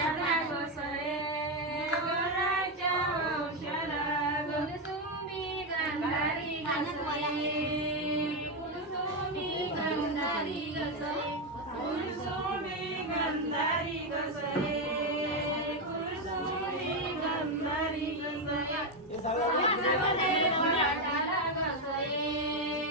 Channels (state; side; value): normal; both; correlation 0.07